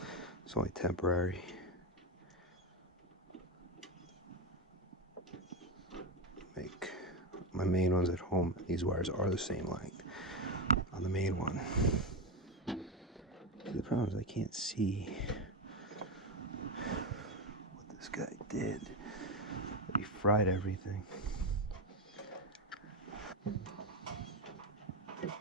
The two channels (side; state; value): both; normal; correlation 0.12